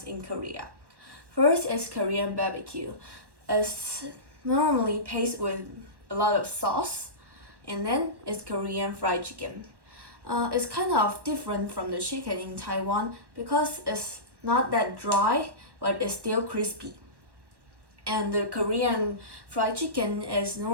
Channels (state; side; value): late; left; 1.1 ms